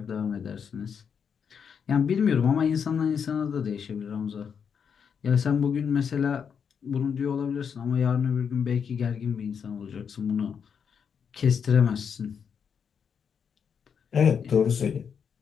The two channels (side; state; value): right; quieter; 7.0 dB